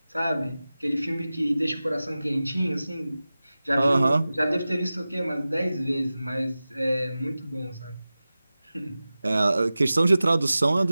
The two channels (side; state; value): both; inverted; correlation -0.96